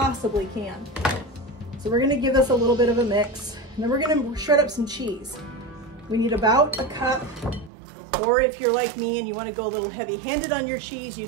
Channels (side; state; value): left; drops out; at 7.7 s